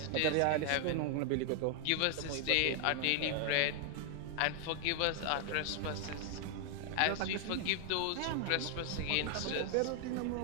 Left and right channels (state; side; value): different; both; correlation 0.00